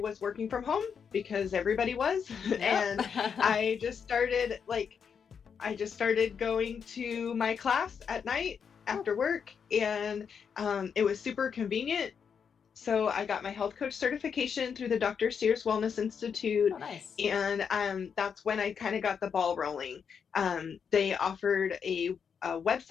was working from home because everybody was. And I just started going to my class at night after work, and it was super convenient. So I got my health coach certification through the Dr. Sears Wellness Institute. Oh, nice. And that's when I kind of got the ball rolling. They offered a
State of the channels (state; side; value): quieter; right; 6.8 dB